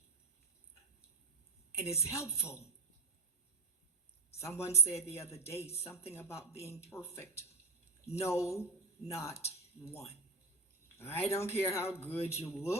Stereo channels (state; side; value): quieter; left; 3.4 dB